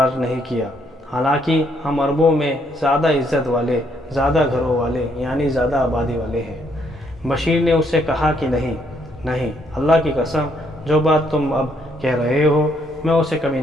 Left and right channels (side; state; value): both; normal; correlation 0.71